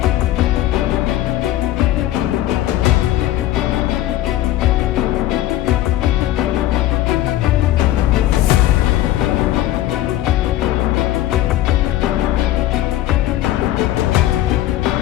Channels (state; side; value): quieter; right; 14.2 dB